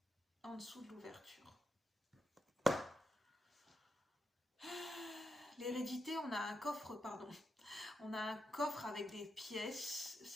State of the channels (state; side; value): normal; both; correlation 0.85